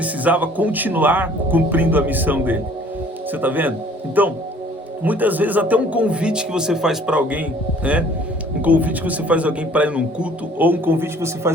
continuar cumprindo a missão dele. Você está vendo? Então, muitas vezes até um convite que você faz para alguém, Um convite que você faz alguém para ir num culto, ou um convite que você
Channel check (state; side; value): normal; both; correlation 0.54